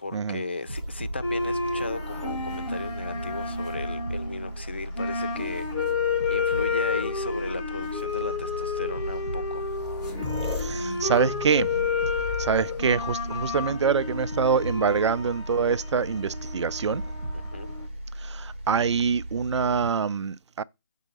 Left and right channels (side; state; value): both; inverted; correlation -0.38